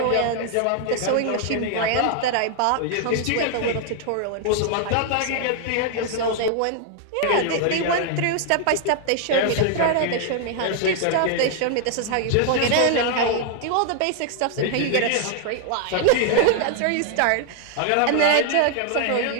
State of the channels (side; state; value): both; different; correlation 0.00